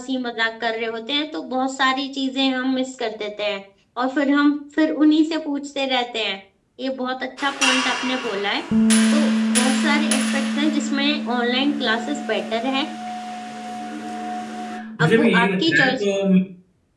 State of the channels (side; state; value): both; identical; correlation 1.00